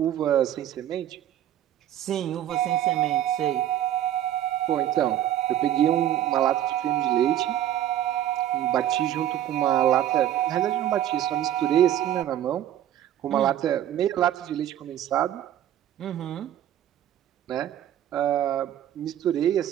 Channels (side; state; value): left; quieter; 11.7 dB